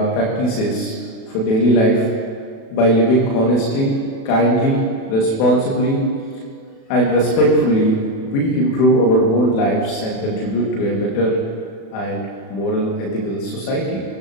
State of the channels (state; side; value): late; right; 36 ms